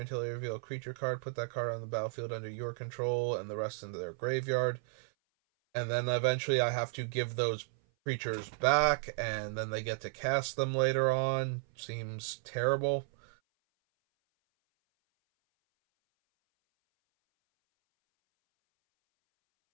until they reveal a creature card. Put that card on the battlefield under your control and the rest into their graveyard. And then eventually I have to give those creatures back, and then they get to cast them later on. Seems terrible.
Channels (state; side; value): silent; left; 55 dB below the other